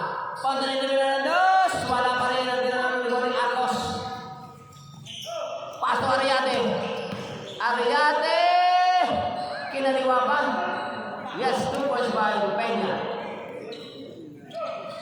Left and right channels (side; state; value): both; identical; correlation 1.00